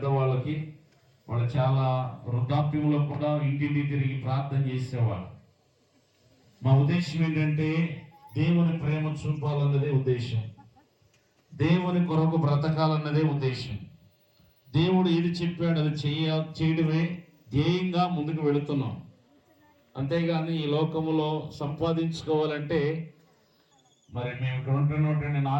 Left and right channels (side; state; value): both; identical; correlation 1.00